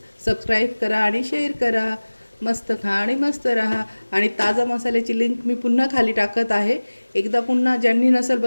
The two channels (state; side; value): inverted; both; correlation -1.00